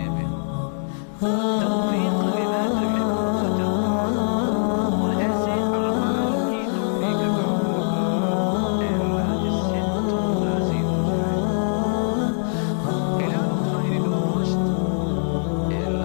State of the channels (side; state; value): right; silent; 64 dB below the other